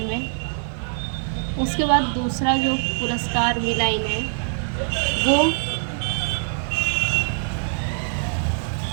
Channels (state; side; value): silent; left; digital silence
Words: में। उसके बाद दूसरा जो पुरस्कार मिला इन्हें वो